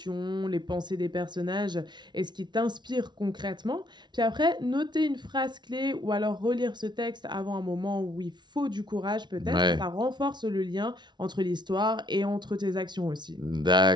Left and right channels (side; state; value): left; late; 0.21 ms